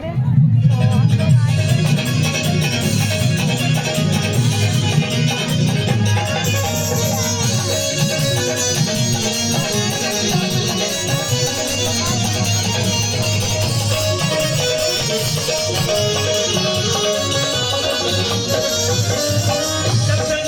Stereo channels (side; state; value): both; identical; correlation 1.00